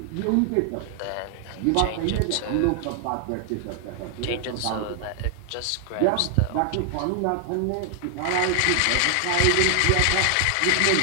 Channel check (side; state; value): both; different; correlation 0.00